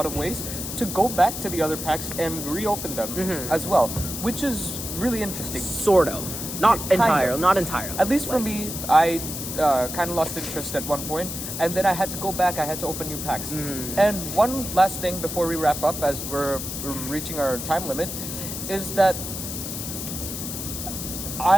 of ways to go back to the other packs and reopen them as well, which is really interesting. Sort of, not entirely. At least for me, I kind of lost interest at one point, and then I had to go back. I had to open new packs. And one last thing before we wrap up, as we're reaching our time limit, is that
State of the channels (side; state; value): left; noise; hiss, 6 dB below the sound